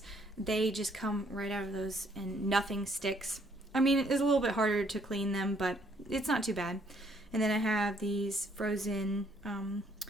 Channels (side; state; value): both; normal; correlation 0.66